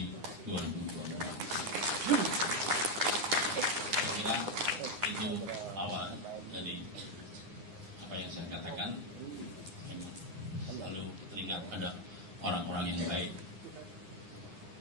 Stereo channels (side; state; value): left; late; 9.8 ms